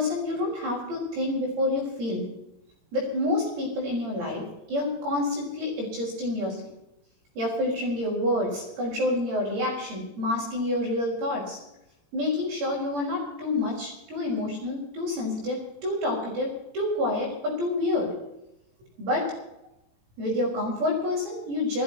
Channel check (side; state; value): left; late; 17 ms